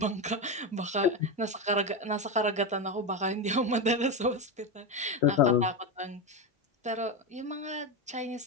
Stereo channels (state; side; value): normal; both; correlation 0.14